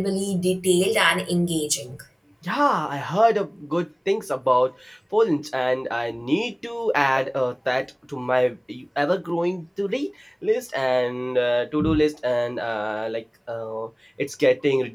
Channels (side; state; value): both; identical; correlation 1.00